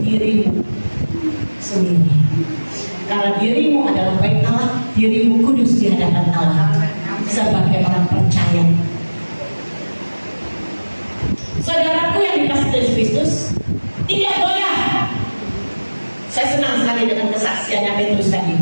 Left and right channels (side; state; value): both; inverted; correlation -1.00